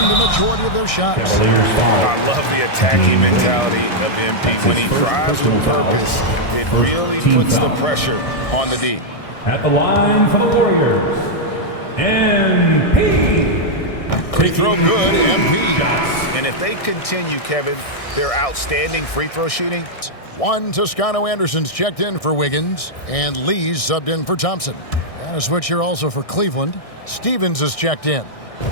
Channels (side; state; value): right; late; 1.6 ms